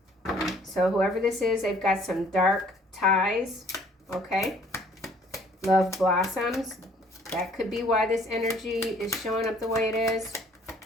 So whoever this is, they've got some dark ties. Okay. Love blossoms. That could be why this energy is showing up the way it is.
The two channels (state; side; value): normal; both; correlation 0.59